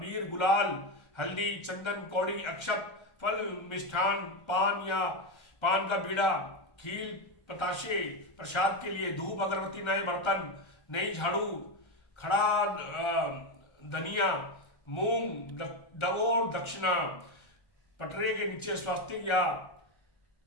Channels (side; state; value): right; late; 1.3 ms